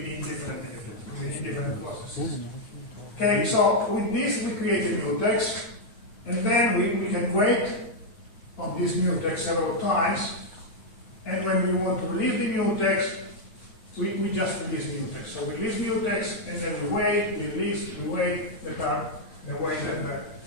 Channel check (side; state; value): right; late; 8.8 ms